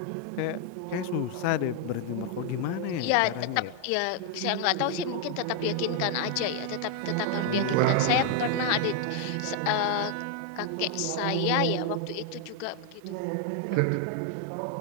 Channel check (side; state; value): both; different; correlation 0.00